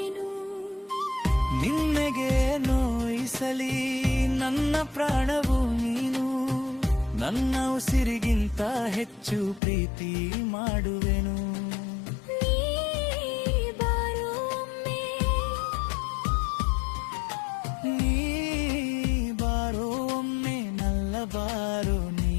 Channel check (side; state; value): right; drops out; at 9.6 s